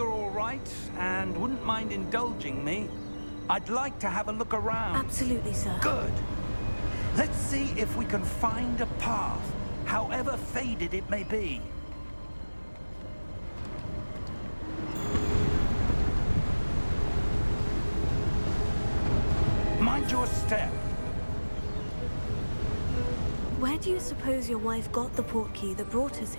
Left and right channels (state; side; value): inverted; both; correlation -1.00